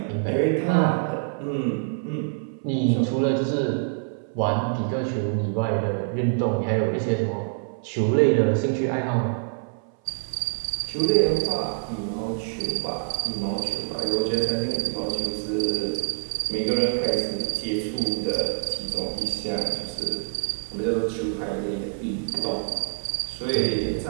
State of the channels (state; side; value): silent; left; 61 dB below the other